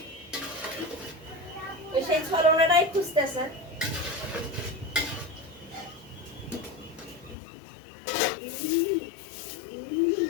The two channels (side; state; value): right; drops out; at 7.4 s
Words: ওই সেই ছলনাটাই খুঁজতেছে